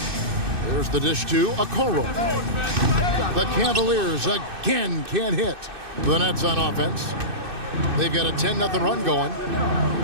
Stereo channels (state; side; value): late; left; 2.6 ms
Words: There's the dish to Okoro. The Cavaliers again can't hit. The Nets on offense. They've got a 10-0 run going.